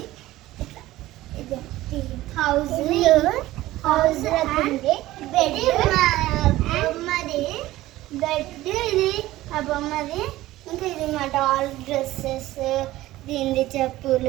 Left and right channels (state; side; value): quieter; left; 16.4 dB